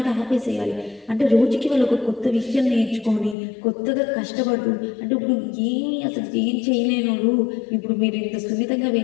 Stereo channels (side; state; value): right; drops out; at 3.4 s